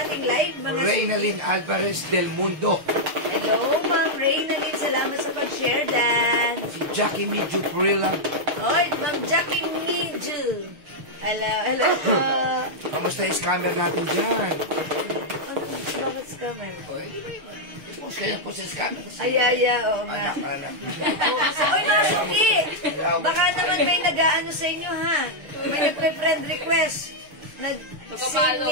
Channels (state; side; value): late; left; 6.7 ms